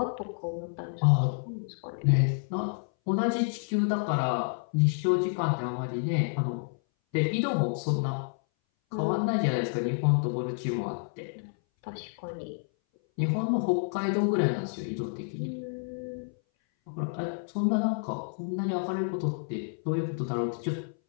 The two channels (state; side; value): silent; right; 58 dB below the other